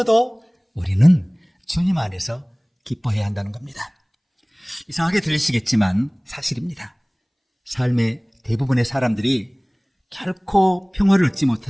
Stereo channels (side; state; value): both; identical; correlation 1.00